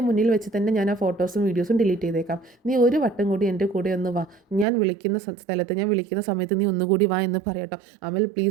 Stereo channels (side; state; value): left; drops out; at 4.7 s